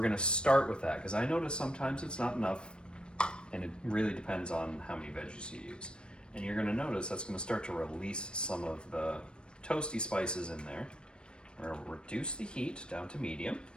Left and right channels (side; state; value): right; late; 0.054 ms